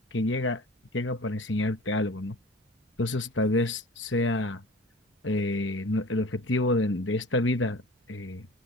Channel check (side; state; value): both; normal; correlation 0.40